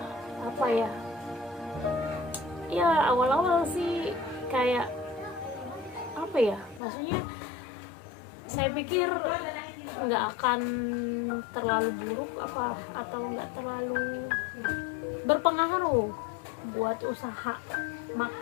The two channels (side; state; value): right; drops out; at 6.8 s